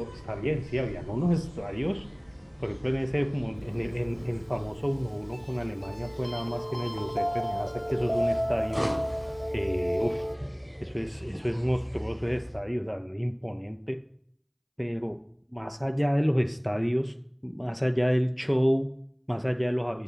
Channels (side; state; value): both; identical; correlation 1.00